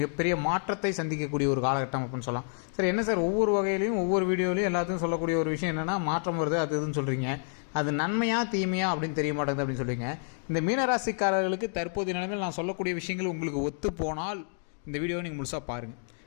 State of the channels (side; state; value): right; silent; 58 dB below the other